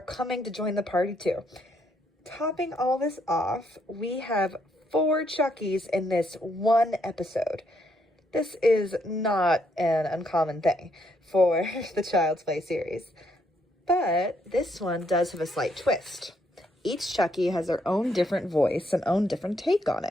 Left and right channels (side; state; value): both; normal; correlation 0.74